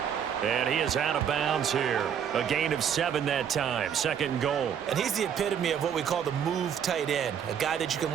And he is out of bounds here. A gain of 7 that time. 2nd and goal. And he's the epitome of what we call the move tight end. A guy that you can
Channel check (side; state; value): left; quieter; 8.3 dB